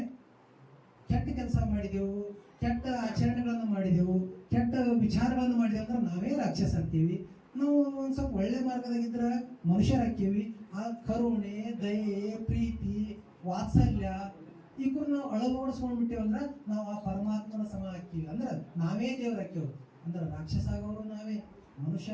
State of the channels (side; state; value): both; identical; correlation 1.00